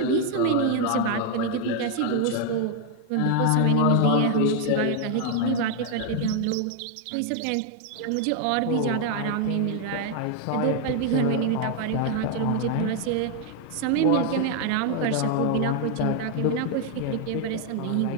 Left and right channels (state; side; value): different; both; correlation 0.00